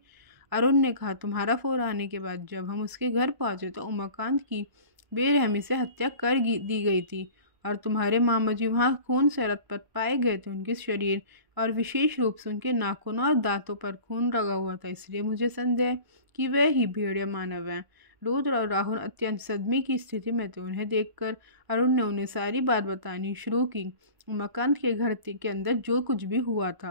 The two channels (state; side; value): late; left; 1.0 ms